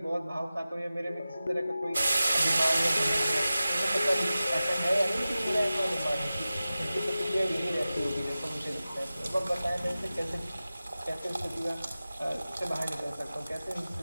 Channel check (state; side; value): inverted; both; correlation -0.95